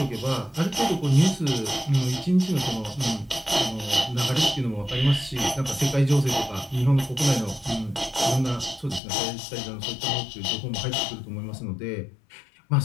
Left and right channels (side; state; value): right; drops out; at 9.0 s